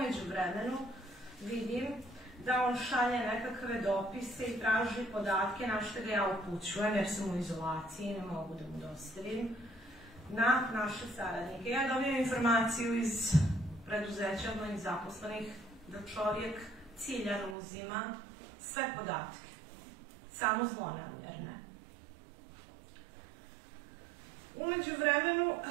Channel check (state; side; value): drops out; left; at 17.6 s